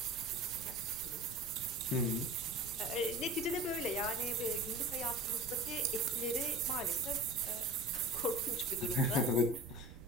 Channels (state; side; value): noise; right; rumble, 16 dB below the sound